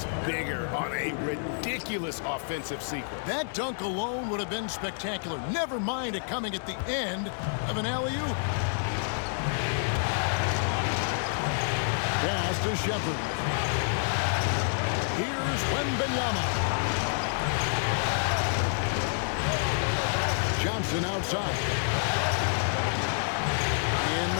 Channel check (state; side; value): silent; right; 59 dB below the other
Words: bigger on a ridiculous offensive sequence. That dunk alone would have been spectacular. Never mind it coming at the end of an alley-oop. Pass to Shepard. Here's Wembanyama. Johnson outside. In